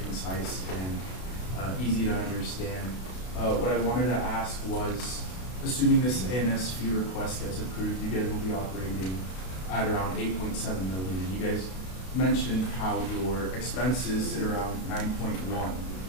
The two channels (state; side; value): late; right; 32 ms